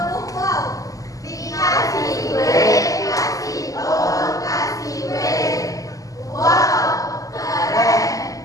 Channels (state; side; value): late; right; 0.17 ms